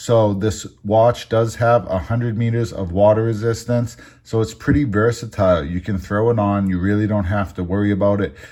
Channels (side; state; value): both; identical; correlation 1.00